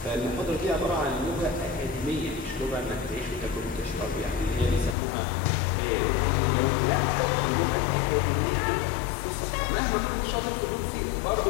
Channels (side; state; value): right; drops out; at 5.0 s